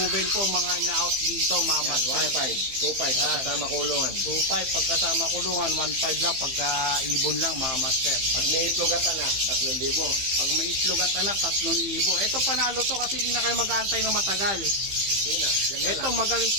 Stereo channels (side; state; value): left; late; 15 ms